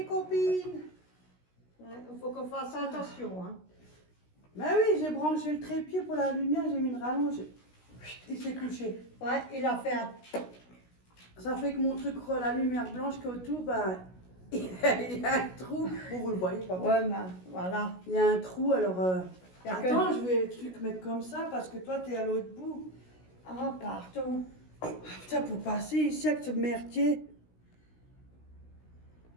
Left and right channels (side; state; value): right; late; 16 ms